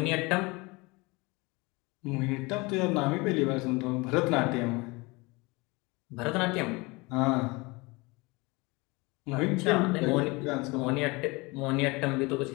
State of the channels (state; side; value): quieter; right; 25.1 dB